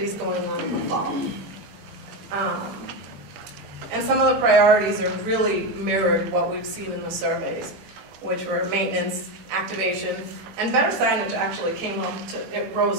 going on in the fall. And some of the priorities are really mirrored what we've seen in the surveys, which were maintenance, activation, and better signage actually came up it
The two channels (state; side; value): late; left; 21 ms